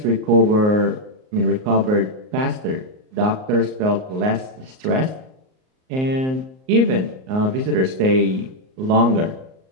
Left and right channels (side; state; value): left; late; 38 ms